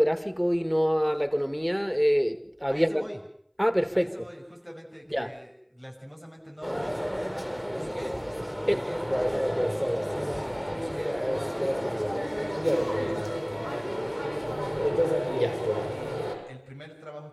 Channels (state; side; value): identical; both; correlation 1.00